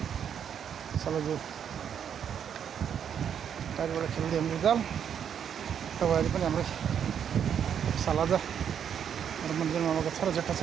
सलजु टाइपबाट खेल्दै हाम्रो जाल तपाईँहरू पनि हाम्रो सालाजा र मन्दिरमा आएको छ र जेठा छ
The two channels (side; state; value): left; quieter; 8.4 dB